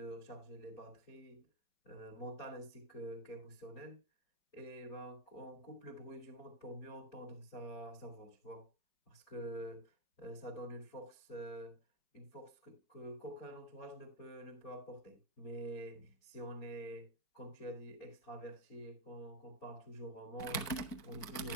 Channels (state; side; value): late; right; 4.5 ms